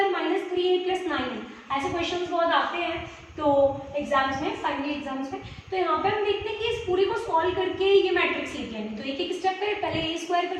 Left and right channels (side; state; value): both; identical; correlation 1.00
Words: 3a + 9। ऐसे क्वेश्चंस बहुत आते हैं तो एग्जाम्स में, फाइनली एग्जाम्स में। तो यहाँ पे हम देखते हैं कि इस पूरी को सॉल्व करके ये मैट्रिक्स लिख लेंगे। तो एक एक स्टेप करें, पहले a²